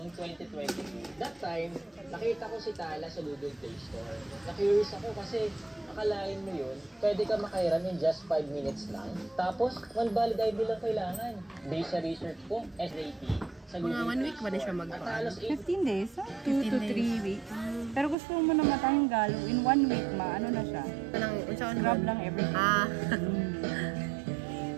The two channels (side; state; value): left; drops out; at 18.2 s